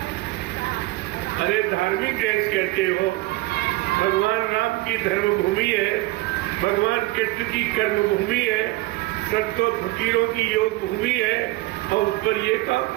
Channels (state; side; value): quieter; left; 19.8 dB